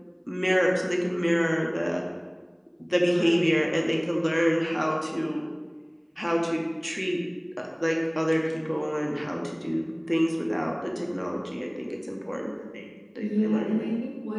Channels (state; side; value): identical; both; correlation 1.00